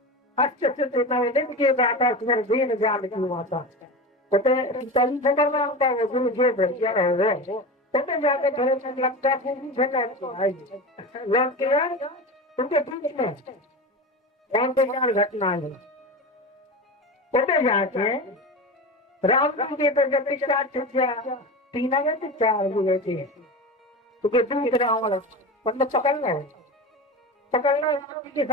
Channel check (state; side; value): normal; both; correlation 0.26